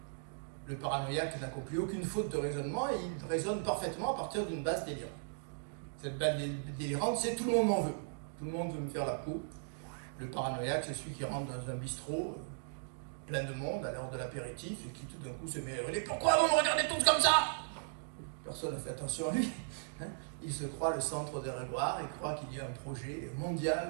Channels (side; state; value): left; silent; digital silence